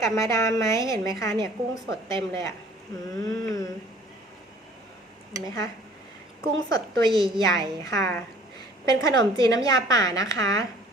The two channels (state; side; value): normal; both; correlation 0.53